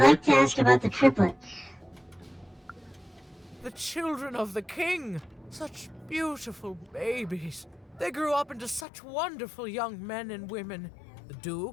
like to ask about the triplets. The children of the king. Such beautiful babies. They grew up into such wonderful young men and women. The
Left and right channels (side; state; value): right; drops out; at 8.8 s